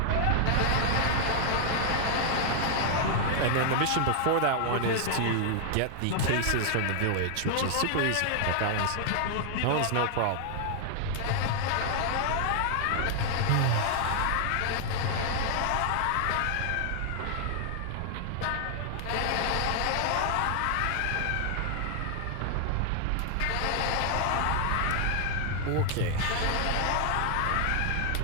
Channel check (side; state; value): both; different; correlation 0.00